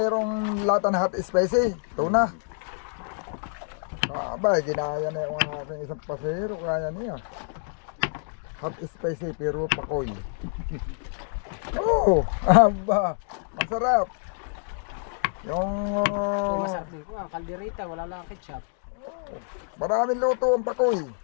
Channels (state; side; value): silent; right; digital silence